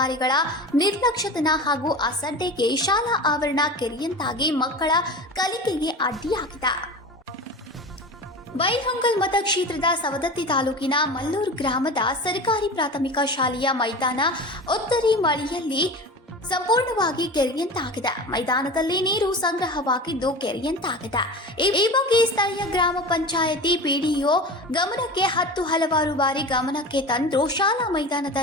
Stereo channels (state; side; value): normal; both; correlation 0.32